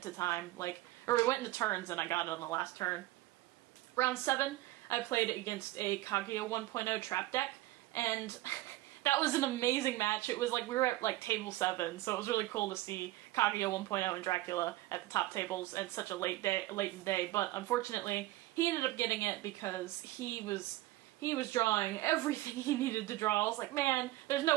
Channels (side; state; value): left; quieter; 17.5 dB